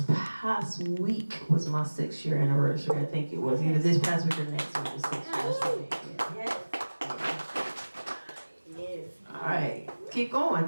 past week was my 6-year anniversary. I think it was either this past week or next week was 6 years for me. Yes. Yes. All right, keep going.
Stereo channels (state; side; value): inverted; both; correlation -1.00